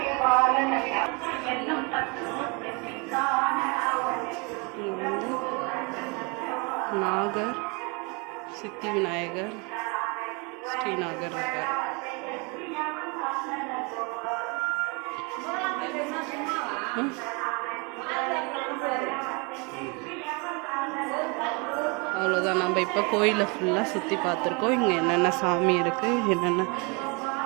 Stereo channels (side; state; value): left; quieter; 30.9 dB